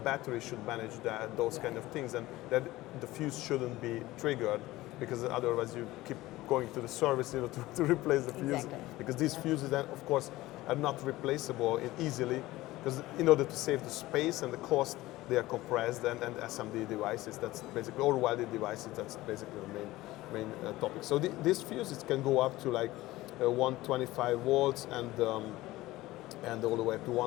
should manage those kind of things, and that the fuse shouldn't be triggered because otherwise you keep going to the service, to replace the fuse, because these fuses then, of course, are not replaceable easily, because in order to save the space and the cost, they are compressed, and SMD devices, that's basically, or welded devices, that's basically the main topic. So these fuses can go up to like 125 volts and all the way up to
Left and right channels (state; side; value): quieter; right; 17.8 dB